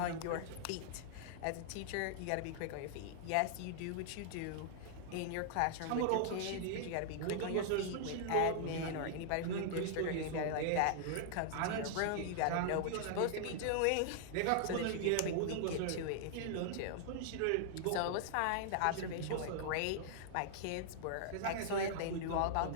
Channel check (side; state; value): both; different; correlation -0.01